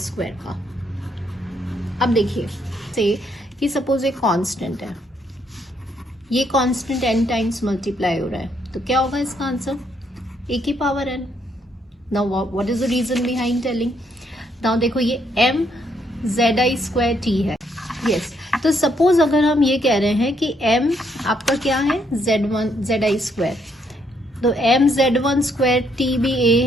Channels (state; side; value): normal; both; correlation 0.72